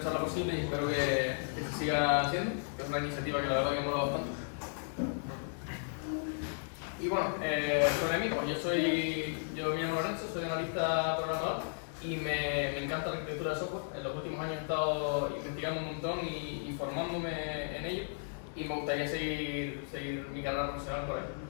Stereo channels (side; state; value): right; silent; digital silence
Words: posible y espero que se siga haciendo, que es una iniciativa que la verdad que mola bastante. Y bueno, sobre mí, pues yo me llamo Lorenzo, soy analista programador y me encanta la arquitectura de software. En los últimos años he estado investigando un montón y formándome en ello y me gustaría seguir mi carrera profesional por ahí.